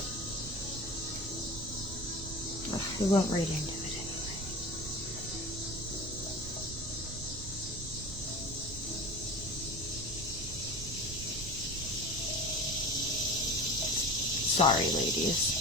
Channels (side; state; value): right; noise; rumble, 10 dB below the sound